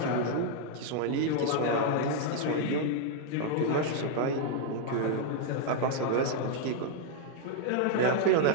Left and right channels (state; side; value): different; both; correlation 0.00